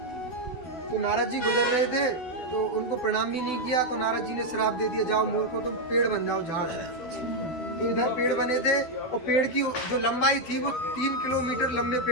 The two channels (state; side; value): late; right; 12 ms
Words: तो नारद जी गुजर रहे थे तो उनको प्रणाम भी नहीं किया, तो नारद जी ने श्राप दे दिया, जाओ मूर्खो तुम पेड़ बन जाओ, झाड़। तो इधर पेड़ बने थे और पेड़ की जो लंबाई थी वो 3 किलोमीटर लंबे